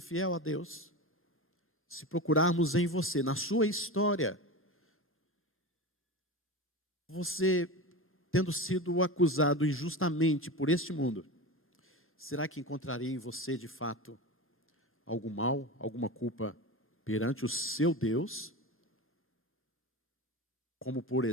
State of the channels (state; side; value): normal; both; correlation 0.25